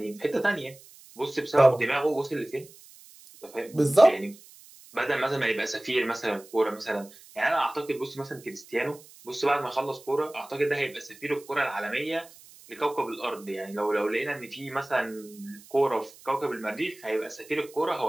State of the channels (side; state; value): right; noise; hiss, 22 dB below the sound